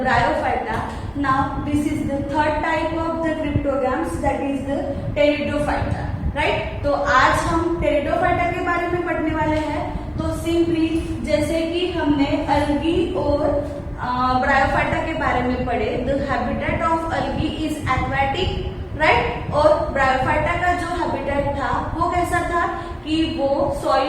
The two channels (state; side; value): identical; both; correlation 1.00